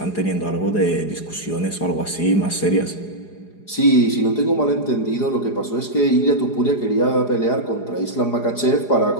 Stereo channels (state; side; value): late; right; 4.8 ms